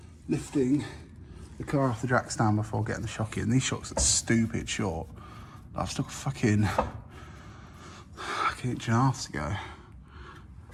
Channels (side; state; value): both; identical; correlation 1.00